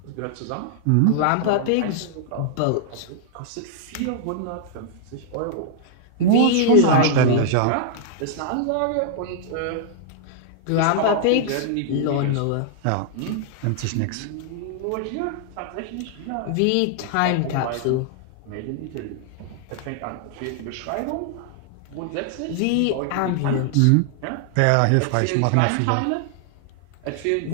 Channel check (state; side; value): different; both; correlation -0.01